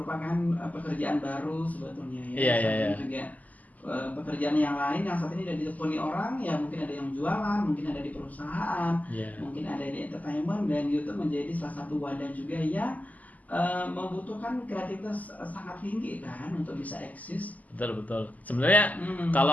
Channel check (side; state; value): right; late; 0.077 ms